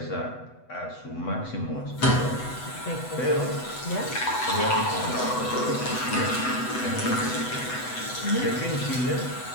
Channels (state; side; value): late; right; 8.0 ms